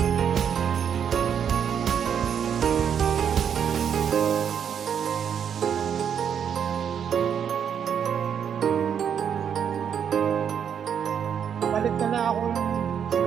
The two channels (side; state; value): left; quieter; 8.1 dB